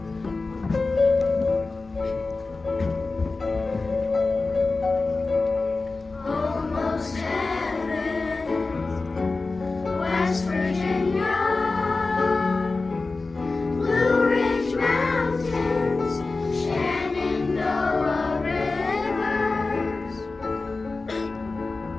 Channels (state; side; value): quieter; right; 3.6 dB